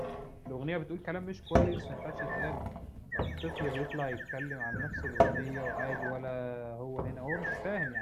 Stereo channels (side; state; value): both; identical; correlation 1.00